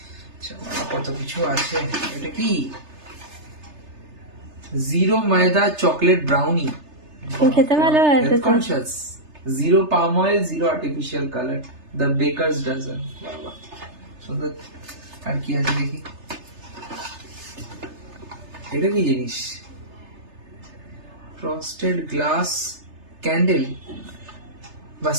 আচ্ছা, কত কিছু আছে। এটা কি? জিরো ময়দা চকলেট ব্রাউনি। তুমি খেতে ভালোবাসো তো? Conscious. Zero palm oil, zero artificial colour, the Baker's Dozen. বাবা সুন্দর। আর কি আছে দেখি। এটা কি জিনিস? ফ্রস্টেড গ্লাস ক্যান্ডেল বা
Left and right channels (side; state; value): left; late; 3.3 ms